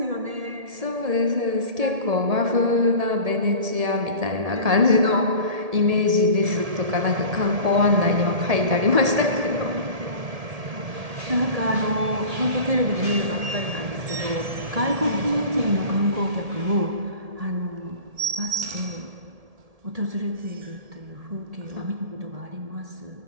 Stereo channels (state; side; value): late; left; 1.7 ms